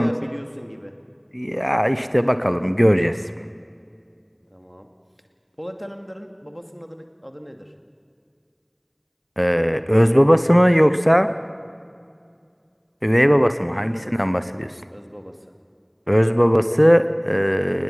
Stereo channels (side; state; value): both; identical; correlation 1.00